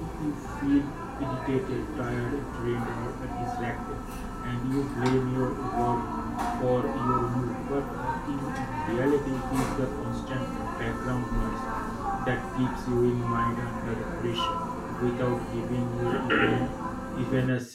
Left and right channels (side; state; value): both; identical; correlation 1.00